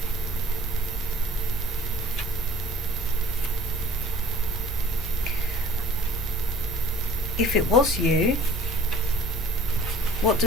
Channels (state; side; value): normal; both; correlation 0.49